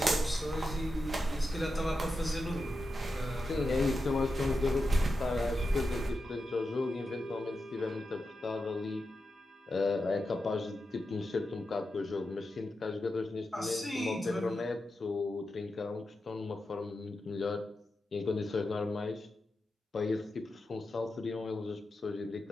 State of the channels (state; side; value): normal; both; correlation 0.89